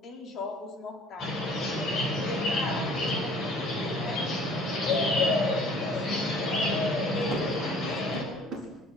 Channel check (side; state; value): both; normal; correlation 0.52